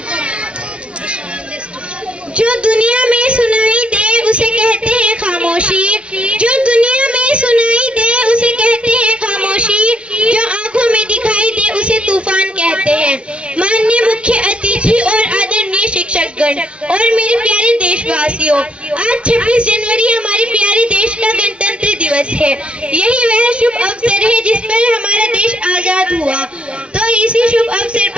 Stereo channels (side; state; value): left; late; 0.059 ms